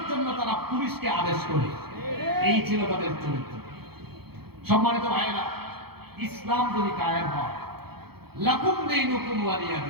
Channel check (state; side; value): late; left; 0.96 ms